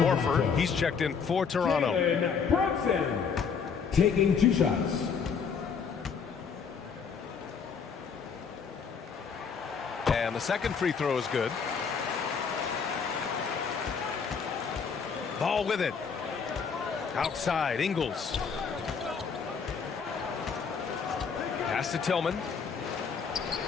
Horford, he's checked in for Toronto. Brunson taking 2 shots. And the second free throw is good. Ball with it. Outside, Ingles. Pass to Tillman.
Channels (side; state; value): right; quieter; 6.1 dB